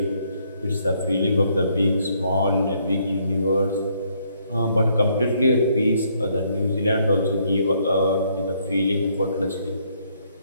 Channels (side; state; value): both; inverted; correlation -0.70